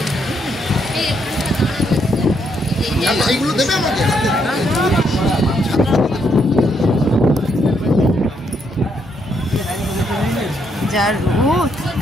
এইগুলো দেবে আমাকে।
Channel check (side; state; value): both; normal; correlation 0.75